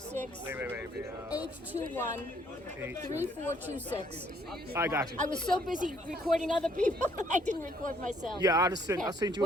I got you. I was so busy recording other people, I didn't record myself. Yeah, I sent you.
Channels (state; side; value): normal; both; correlation 0.65